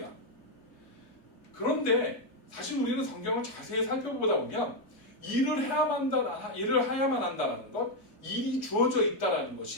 그런데 사실 우리는 성경을 자세히 살펴보다 보면 일을 해야만 한다라는 것, 일이 주어져 있다라는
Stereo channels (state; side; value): late; right; 3.3 ms